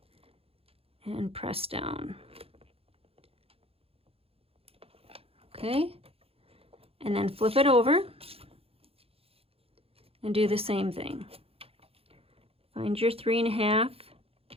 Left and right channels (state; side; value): late; left; 0.28 ms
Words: and press down. Okay, and then flip it over and do the same thing. Find your 3.5